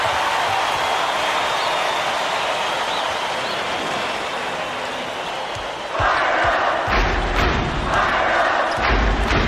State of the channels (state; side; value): identical; both; correlation 1.00